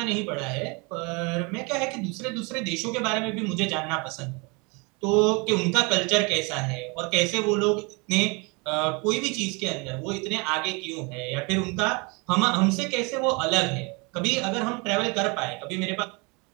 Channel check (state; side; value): quieter; left; 29.6 dB